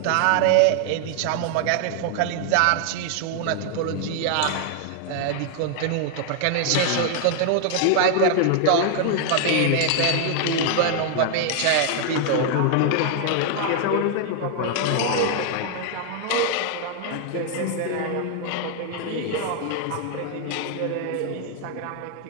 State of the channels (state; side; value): different; both; correlation 0.00